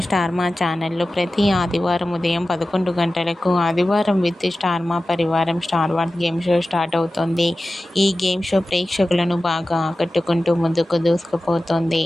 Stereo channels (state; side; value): normal; both; correlation 0.95